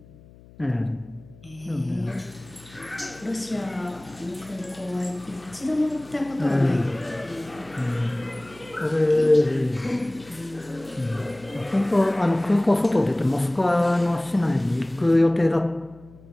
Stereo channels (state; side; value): noise; left; hum, 23 dB below the sound